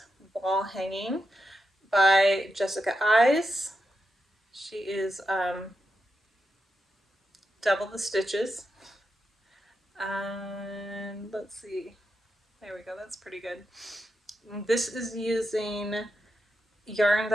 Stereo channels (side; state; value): both; normal; correlation 0.87